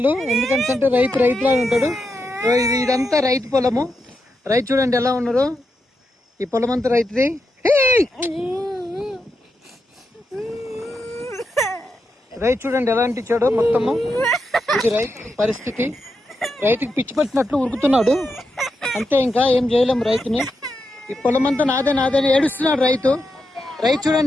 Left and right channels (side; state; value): both; normal; correlation 0.85